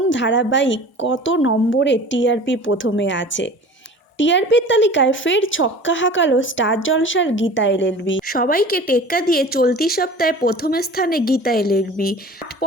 ধারাবাহিক কত নম্বরে টিআরপি প্রথমে আছে। টিআরপির তালিকায় ফের ছক্কা হাঁকালো স্টার জলসার গীতা এলএলবি। সবাইকে টেক্কা দিয়ে চলতি সপ্তাহে প্রথম স্থানে গীতা এলএলবি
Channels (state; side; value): normal; both; correlation 0.41